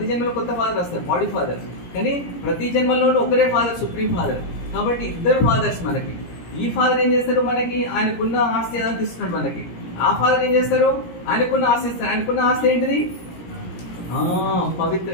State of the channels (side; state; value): right; late; 17 ms